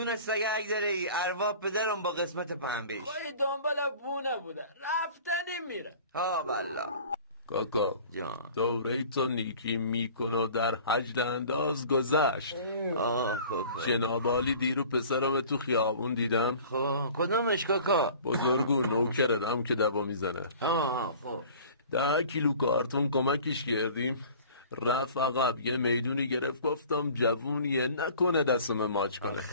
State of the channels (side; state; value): both; inverted; correlation -0.46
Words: سگک داره ای، ارواح پدرم با قسمت پنبهش. خواهی دنبال بونه بوده، رفتنی میره. ها والله. کاکا جان دوره تو نیکی میکنه و در حج انداز گذشت. جناب عالی دیرو پسرم تو خیابون دیدم. خب کدومش کاکا؟ بزرگو نوکردم که دبا میزنه. خب 10 کیلو کارتون کمکش کردیم، رفت عقب یه میدونی گرفت، گفتم جوونیه نکنه دستم ماچ کنه،